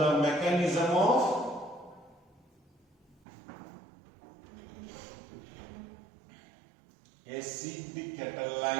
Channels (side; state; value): left; drops out; at 3.2 s